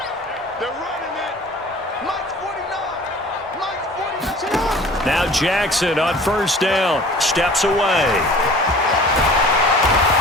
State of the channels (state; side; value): normal; both; correlation 0.46